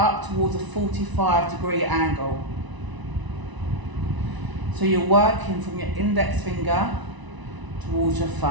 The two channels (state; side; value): late; left; 1.0 ms